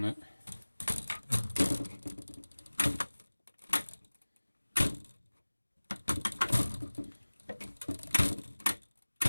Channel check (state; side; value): inverted; both; correlation -1.00